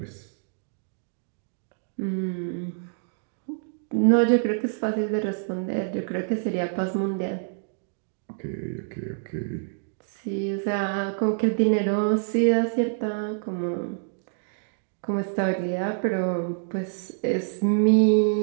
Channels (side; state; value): left; silent; digital silence